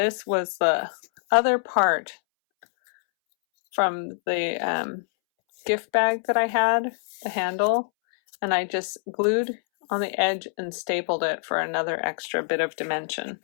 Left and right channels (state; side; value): silent; right; 62 dB below the other